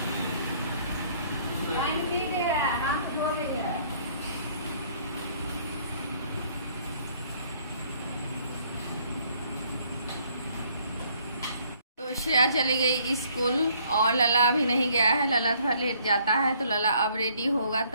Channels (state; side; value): inverted; both; correlation -0.63